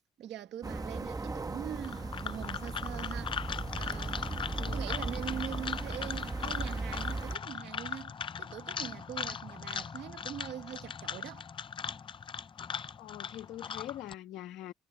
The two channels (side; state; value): both; normal; correlation 0.48